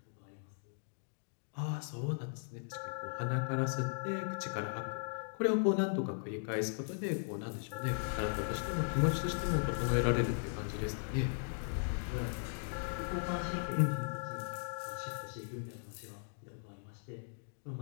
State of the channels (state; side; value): silent; right; digital silence